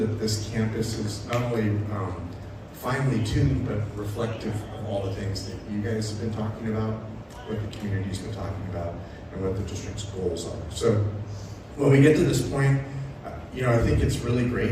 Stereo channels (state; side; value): identical; both; correlation 1.00